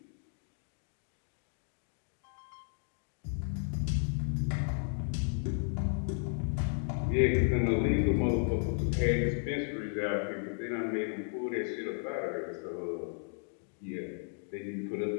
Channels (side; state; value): right; silent; 55 dB below the other